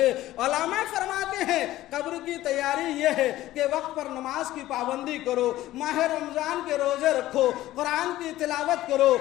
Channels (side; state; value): right; quieter; 15.4 dB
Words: علماء فرماتے ہیں، قبر کی تیاری یہ ہے کہ وقت پر نماز کی پابندی کرو، ماہ رمضان کے روزے رکھو، قرآن کی تلاوت کرو،